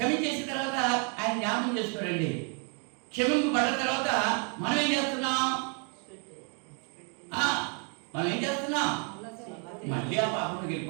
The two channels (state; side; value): quieter; left; 39.0 dB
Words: తర్వాత ఆయన జ్ఞాపకం చేసుకోడండి. క్షమింపబడ్డ తర్వాత మనం ఏం చేస్తున్నాం? మనం ఏం చేస్తున్నాం? మళ్ళీ ఆ పాపంలోకి